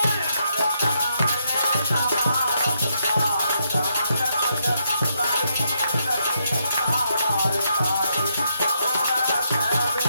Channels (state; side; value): inverted; both; correlation -0.78